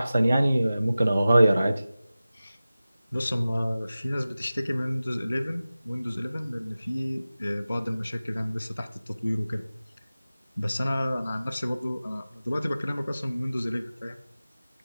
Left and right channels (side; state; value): both; inverted; correlation -0.96